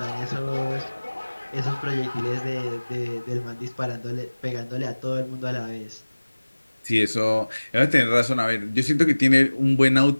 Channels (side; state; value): both; inverted; correlation -1.00